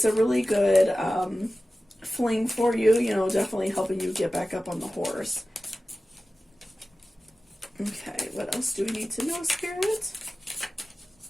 a really good fling for you, you know, definitely helping you get back up on the horse. Okay, what else do we need to know, Spirit?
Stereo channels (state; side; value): normal; both; correlation 0.95